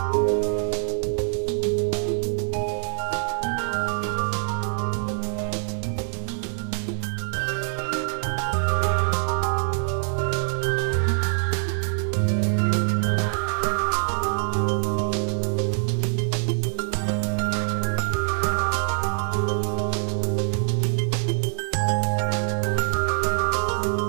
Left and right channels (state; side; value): silent; left; digital silence